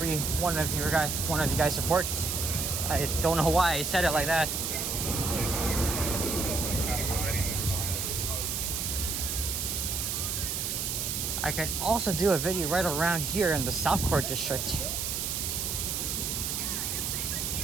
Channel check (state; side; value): noise; right; hiss, 1 dB below the sound